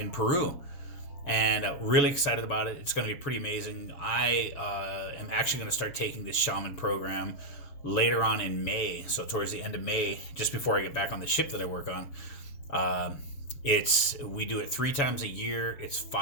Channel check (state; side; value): late; right; 7.0 ms